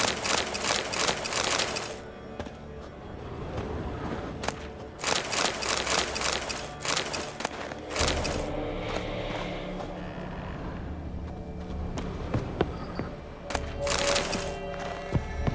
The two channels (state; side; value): identical; both; correlation 1.00